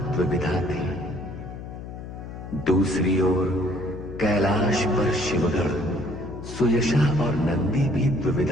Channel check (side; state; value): left; noise; hum, 11 dB below the sound